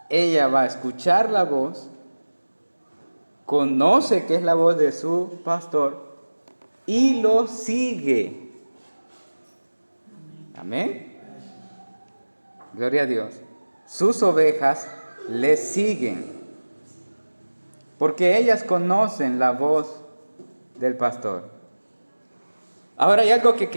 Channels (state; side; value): inverted; both; correlation -1.00